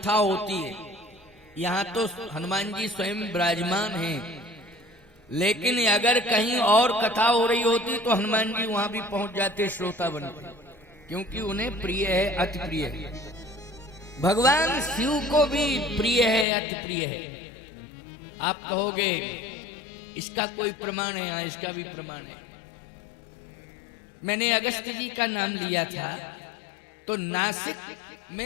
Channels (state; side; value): drops out; right; at 16.4 s